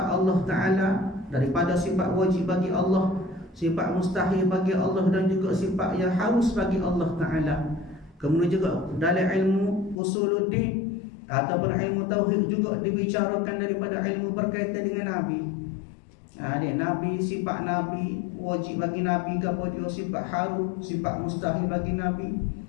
Allah Ta'ala, daripada sifat wajib bagi Allah, sifat mustahil bagi Allah, dan juga sifat yang harus bagi Allah Ta'ala. Kemudian juga dalam ilmu usuluddin ataupun ilmu tauhid juga dibicarakan daripada ilmu berkaitan dengan Nabi. Nabi, sifat Nabi, wajib bagi Nabi ke apa dia, sifat harus, sifat mustahil bagi Nabi.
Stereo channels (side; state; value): right; drops out; at 10.0 s